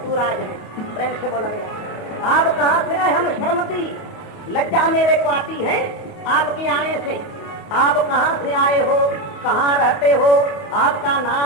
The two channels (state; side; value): late; right; 28 ms